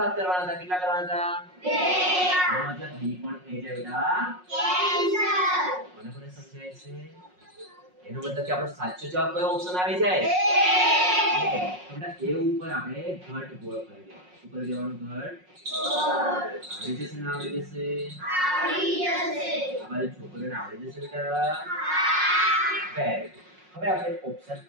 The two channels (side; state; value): left; late; 5.5 ms